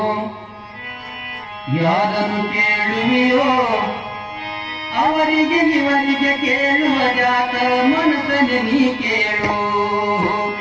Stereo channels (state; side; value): identical; both; correlation 1.00